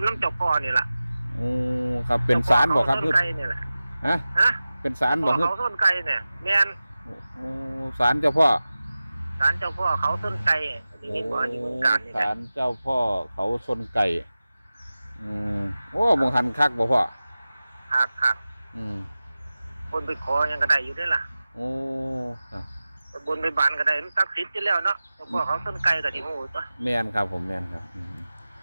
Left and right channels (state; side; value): inverted; both; correlation -0.96